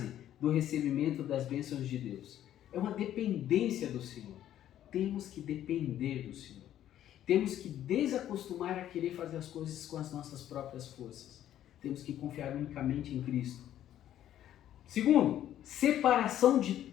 do recebimento das bênçãos de Deus é uma dependência do Senhor. Temos que depender do Senhor. Temos que desacostumar a querer fazer as coisas com as nossas próprias forças. Temos que confiar unicamente em Cristo. Segundo, separação de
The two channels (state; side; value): quieter; right; 11.7 dB